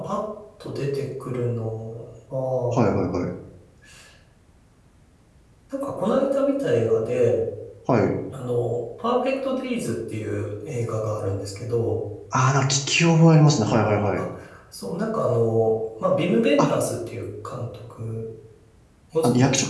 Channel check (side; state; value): both; identical; correlation 1.00